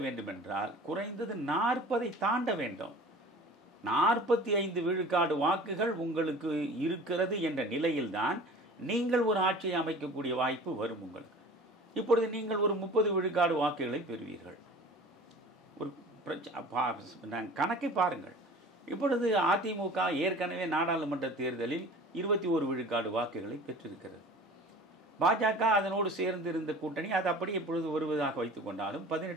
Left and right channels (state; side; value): normal; both; correlation 0.42